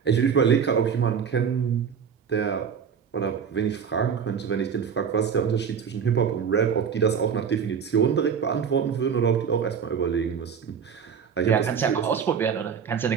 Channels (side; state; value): left; quieter; 7.1 dB